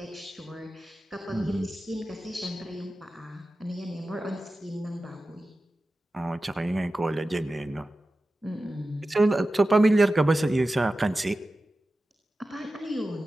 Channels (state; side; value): normal; both; correlation 0.94